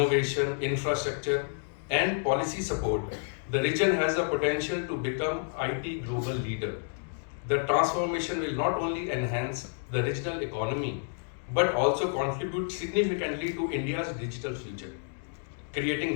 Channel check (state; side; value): silent; right; digital silence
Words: infrastructure, and policy support, the region has the potential to become IT global leader. The transformation will not only enhance the regional economy but also contribute significantly to India's digital future,